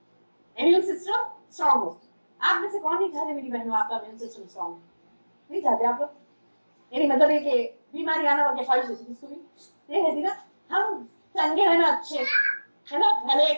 इम्यून सिस्टम स्ट्रांग हो। आप में से कौन नहीं चाहते मेरी बहनों आपका इम्यून सिस्टम स्ट्रांग, नहीं चाहते आप लोग, यानी मतलब ये कि बीमारी आना वाली ख्वाहिश होती है, इसको भी ये रहती ना, हम चंगे है ना, अच्छे है ना, भले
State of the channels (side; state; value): both; inverted; correlation -1.00